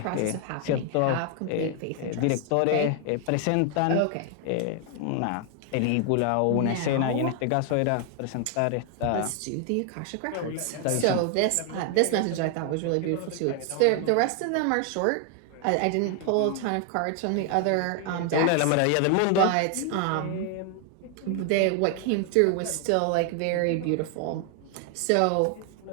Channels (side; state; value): both; different; correlation 0.00